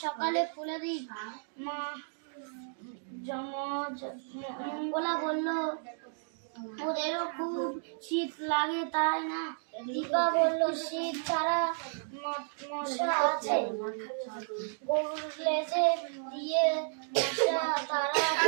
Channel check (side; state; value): left; silent; digital silence